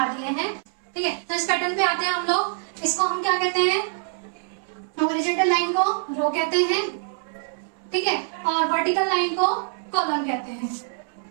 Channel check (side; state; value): left; silent; 61 dB below the other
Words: दिए हैं। ठीक है, तो इस पैटर्न पे आते हैं हम लोग। इसको हम क्या कहते हैं? हॉरिजॉन्टल लाइन को रो कहते हैं, ठीक है, और वर्टिकल लाइन को कॉलम कहते हैं।